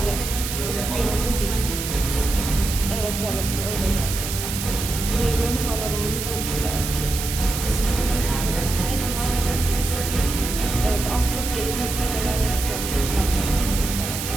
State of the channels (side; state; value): right; noise; hiss, 5 dB below the sound